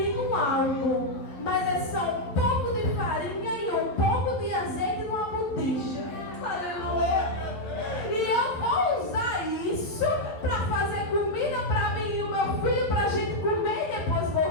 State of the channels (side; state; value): right; late; 11 ms